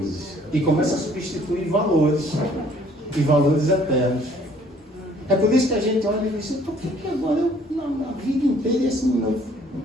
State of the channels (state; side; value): normal; both; correlation 0.59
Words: E começa a substituir valores. E valores eternos. É por isso que a gente olha e diz, por que agora na vida inteira esse menino